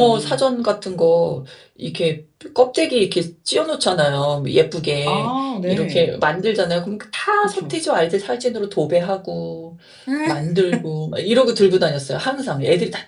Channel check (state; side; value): identical; both; correlation 1.00